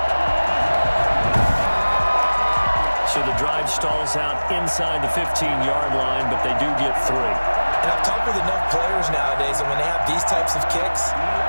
5. So the drive stalls out inside the 15-yard line, but they do get 3. And I've talked with enough players nowadays, and when they have these types of kicks,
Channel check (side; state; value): both; inverted; correlation -1.00